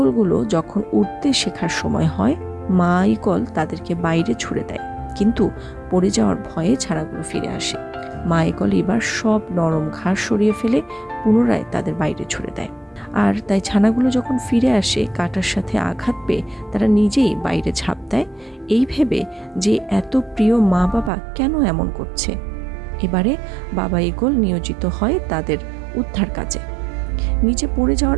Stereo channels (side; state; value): left; drops out; at 21.1 s